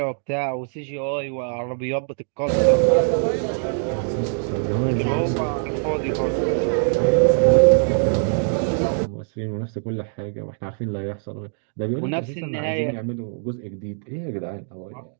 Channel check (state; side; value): silent; left; digital silence